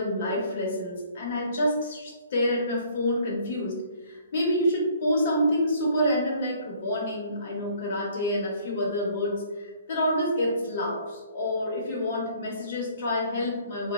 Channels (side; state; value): both; inverted; correlation -0.57